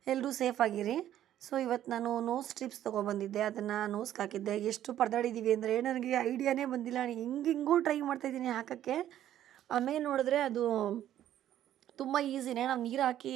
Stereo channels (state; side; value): quieter; left; 11.8 dB